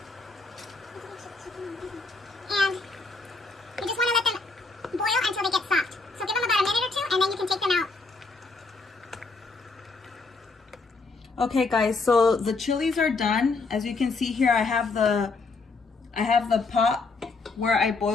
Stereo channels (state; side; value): quieter; right; 3.9 dB